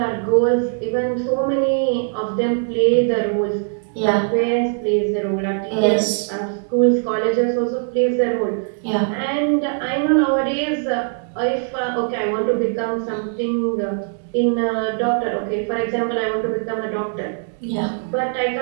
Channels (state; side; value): silent; left; 59 dB below the other